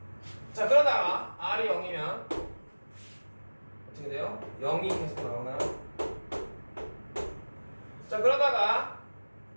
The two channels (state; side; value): inverted; both; correlation -1.00